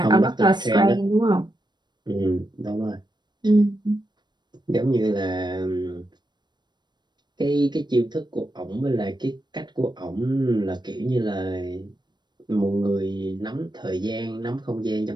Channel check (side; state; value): left; late; 0.21 ms